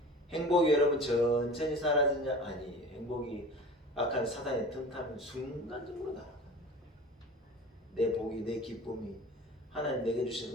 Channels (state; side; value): normal; both; correlation 0.39